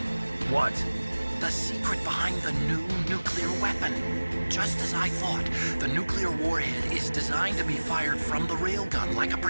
What? The secret behind the new nuclear weapon. Just as I thought, the nuclear warhead is designed to be fired from the railgun like a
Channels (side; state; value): both; inverted; correlation -1.00